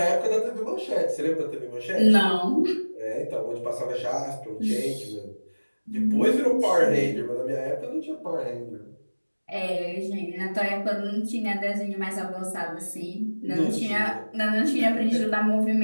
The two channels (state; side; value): inverted; both; correlation -1.00